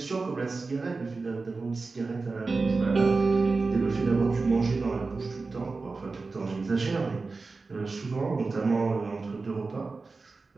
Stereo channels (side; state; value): left; quieter; 4.0 dB